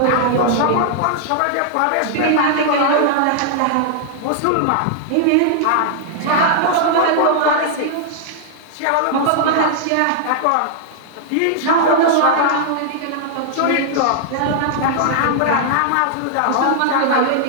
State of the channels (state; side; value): different; both; correlation -0.01